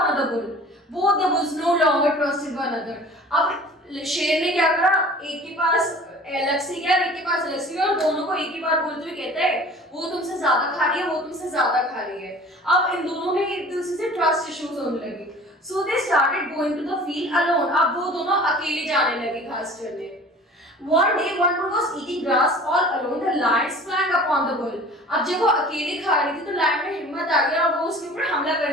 another bull. Both the bulls no longer trusted one another. अब शेर ने क्या करा, एक के पास अलग से गया, एक के पास अलग से गया, और दोनों को एक ही बार बोलते हुए कहता है वो तुमसे ज्यादा खा रही है, वो तुमसे ज्यादा खा रही है। अब इन दोनों में एक दूसरे से ट्रस्ट इश्यूज होने लगे। So they started going to the field alone. अब वो दोनों अकेले जाने लगे घास चरने। One day one bull was eating grass all alone. The lion sprang upon the bull. अब जब वो अकेले खा रही थी तो लायन में हिम्मत आ गया और वो उसके ऊपर हमला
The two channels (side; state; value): both; normal; correlation 0.45